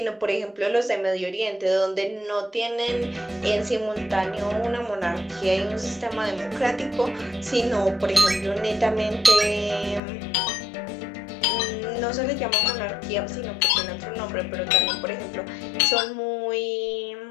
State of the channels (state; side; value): drops out; right; at 10.0 s